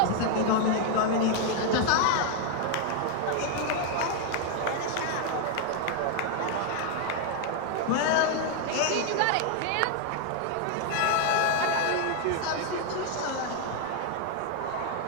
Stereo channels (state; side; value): different; both; correlation 0.00